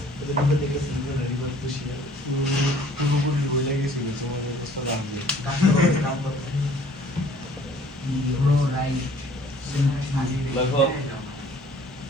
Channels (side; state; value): both; normal; correlation 0.55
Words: ওদের দিকে দেখে সিঙ্গেল রিভার তো শিয়াল পুরোপুরি বইলে গেছিল তোমাদের অবস্থা দাম দিয়ে কাম করতে দেখো